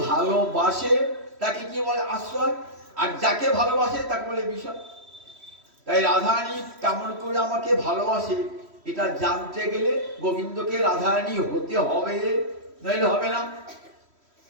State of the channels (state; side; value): late; left; 3.1 ms